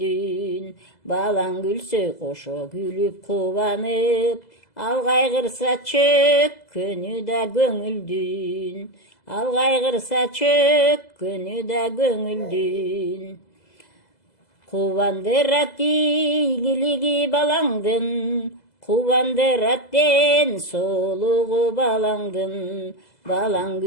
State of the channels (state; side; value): late; right; 2.0 ms